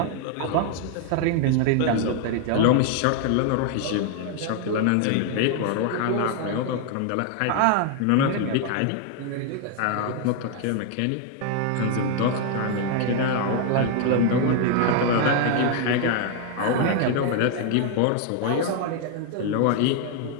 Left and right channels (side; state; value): both; different; correlation 0.00